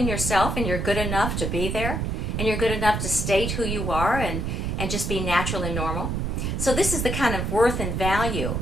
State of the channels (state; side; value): noise; right; rumble, 1 dB below the sound